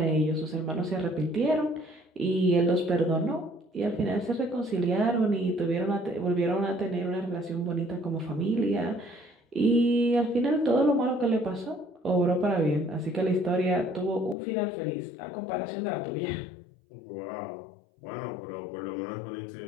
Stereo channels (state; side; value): drops out; right; at 14.4 s